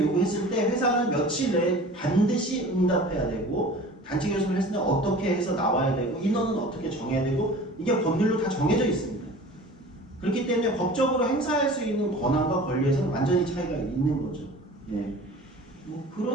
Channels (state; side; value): normal; both; correlation 0.42